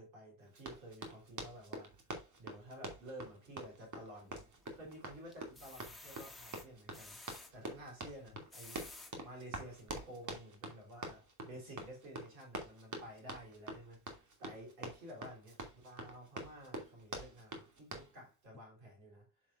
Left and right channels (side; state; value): both; normal; correlation 0.09